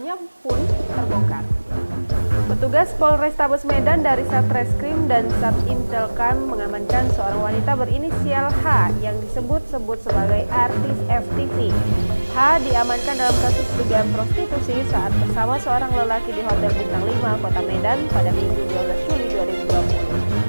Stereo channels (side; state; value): both; inverted; correlation -1.00